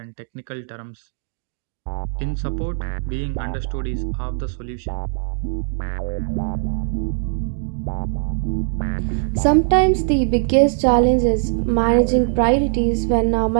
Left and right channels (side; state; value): left; silent; 63 dB below the other